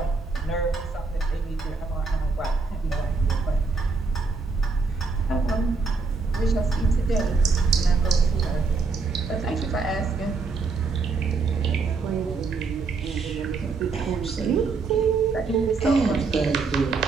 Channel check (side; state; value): left; quieter; 4.4 dB